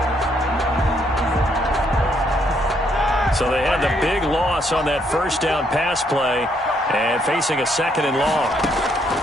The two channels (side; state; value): both; normal; correlation 0.72